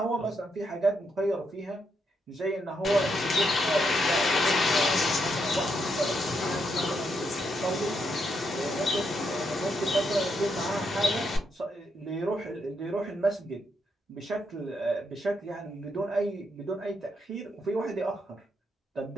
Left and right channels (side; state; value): both; normal; correlation 0.79